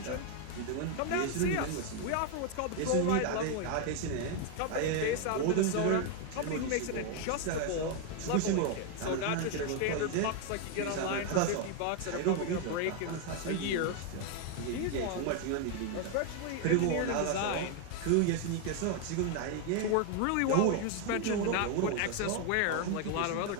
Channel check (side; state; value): both; different; correlation 0.01